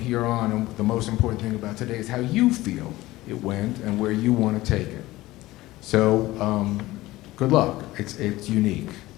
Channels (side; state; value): right; quieter; 17.8 dB